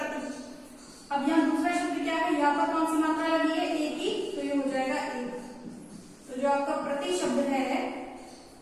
अब यहाँ दूसरा शब्द क्या है, यहाँ पर कौन सी मात्रा लगी है, ए की, तो ये हो जाएगा एक। तो जो आपका प्रति शब्द है,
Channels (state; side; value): identical; both; correlation 1.00